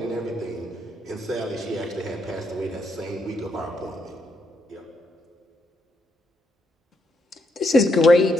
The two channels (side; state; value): both; normal; correlation 0.77